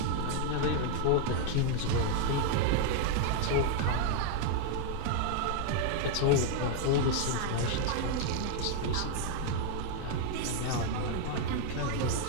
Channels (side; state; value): both; different; correlation 0.00